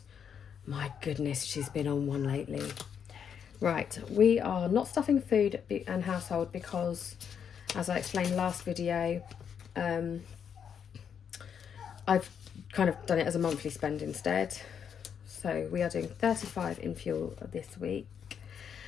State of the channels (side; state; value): right; quieter; 7.7 dB